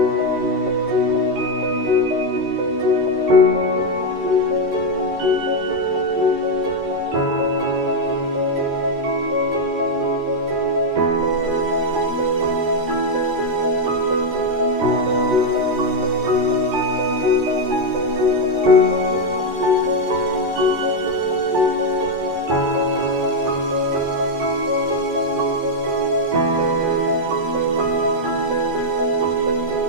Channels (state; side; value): late; left; 13 ms